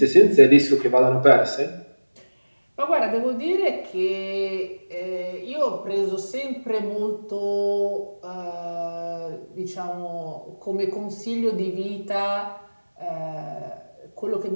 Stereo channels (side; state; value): both; inverted; correlation -1.00